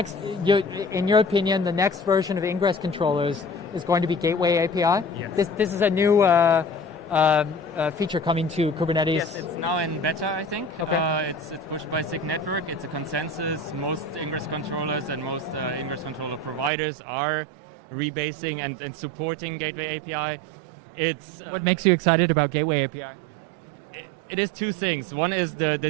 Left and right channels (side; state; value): left; drops out; at 16.7 s